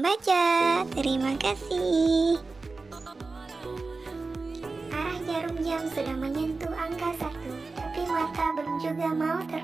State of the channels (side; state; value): left; quieter; 3.9 dB